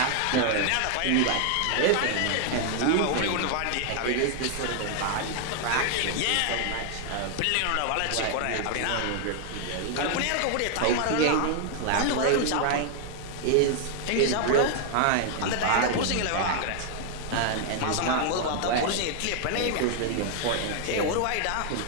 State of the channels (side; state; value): both; different; correlation 0.00